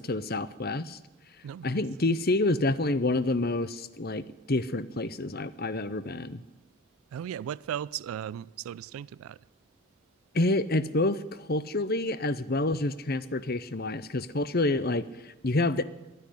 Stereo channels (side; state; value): both; normal; correlation 0.35